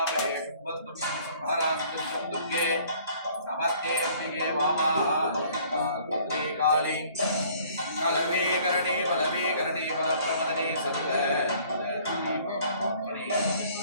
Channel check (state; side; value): inverted; both; correlation -0.56